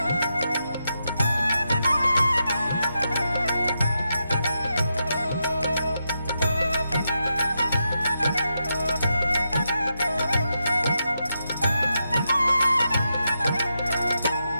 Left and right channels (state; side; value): inverted; both; correlation -0.85